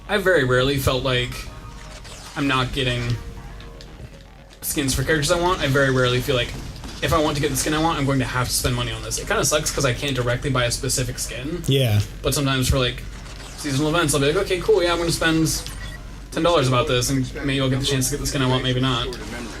I very rarely felt like I'm not getting skins for characters I want. I very rarely feel like if I want to get the skin I want, I'm going to have to spend money on this. It kind of sucks because I can't directly buy a specific skin, Yeah. but sometimes for, like, seasonal events, I'll be like, okay, cool, yeah, I'm going to spend $10 about this, and maybe I'll get the chance to get the skin I want, maybe not.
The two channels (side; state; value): both; identical; correlation 1.00